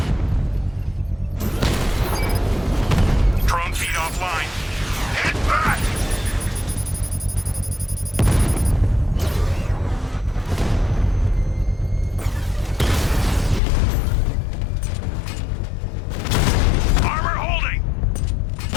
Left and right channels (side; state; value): right; drops out; at 13.6 s